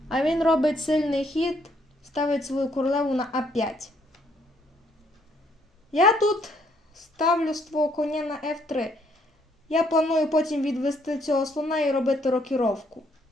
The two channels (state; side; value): normal; both; correlation 0.68